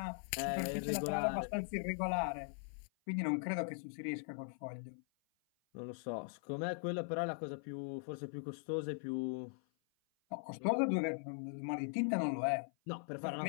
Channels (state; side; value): silent; right; 51 dB below the other